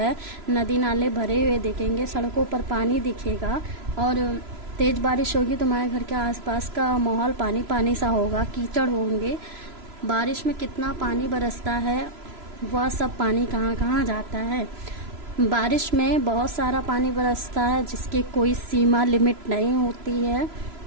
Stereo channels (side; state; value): left; late; 3.0 ms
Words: नदी नाले भरे हुए दिखेंगे, सड़कों पर पानी दिखेगा। और तेज़ बारिश होगी तो हमारे घर के आसपास का माहौल पानी पानी सा होगा, कीचड़ होंगे। बारिश में कितना पानी बरसता है, वह सब पानी कहाँ कहाँ जाता है। बारिश में बहुत सारा पानी बरसता है जिसकी कोई सीमा लिमिट नहीं होती है।